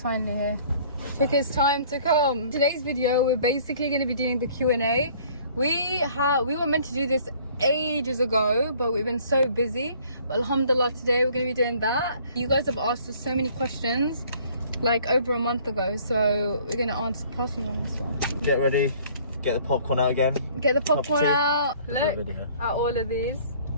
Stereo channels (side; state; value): both; inverted; correlation -0.55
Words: finally here. Took his time to come. Today's video, we're basically going to be doing the Q&A. We were meant to do this ages ago, but we've been so busy. But alhamdulillah, today we're going to be doing that. You guys have asked us so many questions like over a month ago, so we're going to answer. Pass you one as well. Get ready. Get the popcorn out again. Get the popcorn out. Look at all of these.